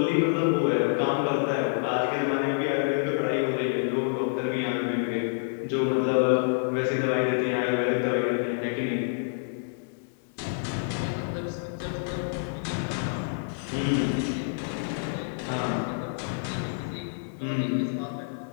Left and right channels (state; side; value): silent; right; digital silence